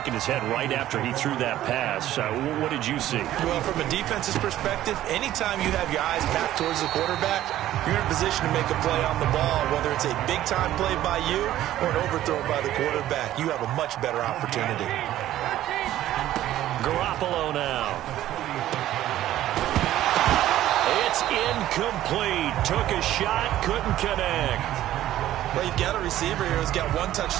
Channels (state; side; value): quieter; left; 13.5 dB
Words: his head right after he threw that pass. What did you see? Well, from a defense's perspective, anytime you have your eyes back towards the quarterback, you're in a position to make a play on the ball, whether it's a big-time play by you or an overthrow by the quarterback. You have a much better opportunity. Garoppolo now. It's incomplete. Took a shot, couldn't connect. Well, you've got a receiver here who's got one